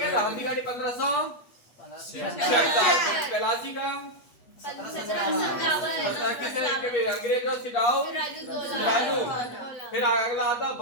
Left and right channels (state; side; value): late; right; 8.2 ms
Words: था। हल्दी घाटी 1576। पलासी का अंग्रेज और सिडाऊ राजू। फिर अगला आता